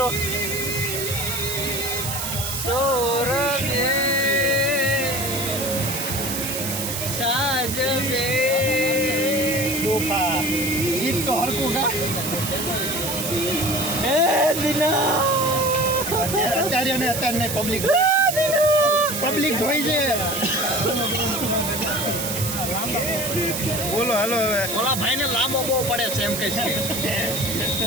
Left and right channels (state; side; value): noise; right; hiss, 4 dB below the sound